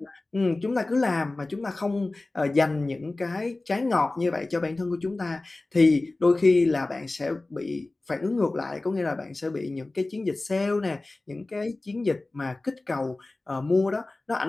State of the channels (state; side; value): quieter; right; 3.0 dB